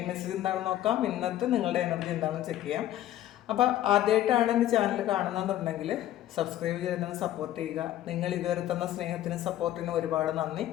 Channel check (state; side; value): quieter; right; 13.2 dB